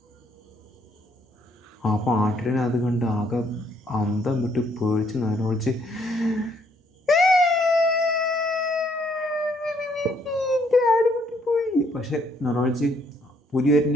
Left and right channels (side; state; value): both; normal; correlation 0.68